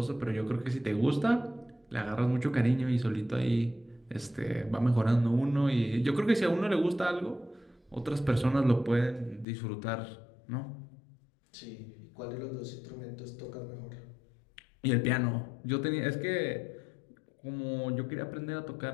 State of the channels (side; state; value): right; drops out; at 9.5 s